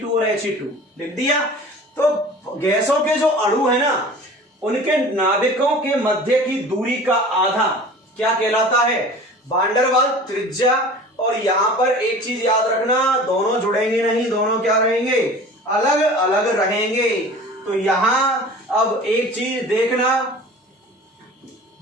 और He2 लिख दिया। तो गैसों के जो अणु है ना, उनके नाभिकों के मध्य की दूरी का आधा क्या कहलाता है? वान डेर वाल त्रिज्या। और यहां पर एक चीज याद रखना, दोनों जुड़ेंगे नहीं, दोनों क्या रहेंगे? अलग अलग रहेंगे। तो यहां अब एक चीज देखना,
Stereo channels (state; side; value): normal; both; correlation 0.41